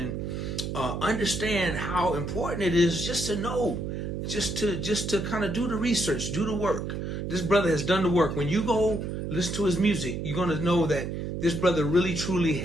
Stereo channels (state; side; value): noise; right; hum, 4 dB below the sound